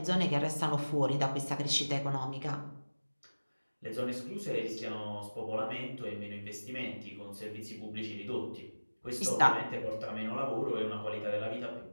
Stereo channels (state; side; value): inverted; both; correlation -1.00